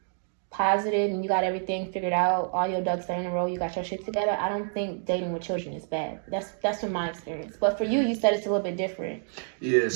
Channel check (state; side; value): silent; left; 59 dB below the other